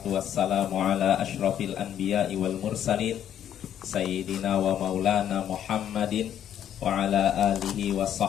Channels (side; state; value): right; quieter; 10.2 dB